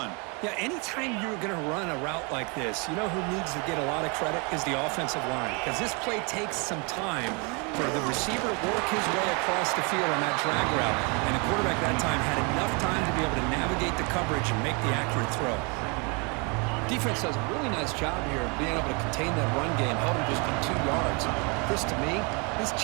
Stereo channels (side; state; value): left; quieter; 32.2 dB